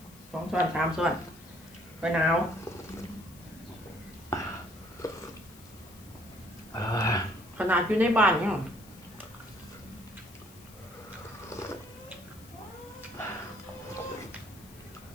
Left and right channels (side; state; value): left; noise; hiss, 22 dB below the sound